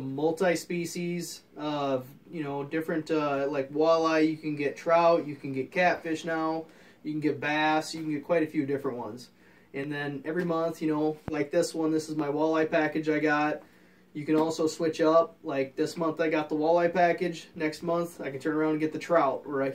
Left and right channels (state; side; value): identical; both; correlation 1.00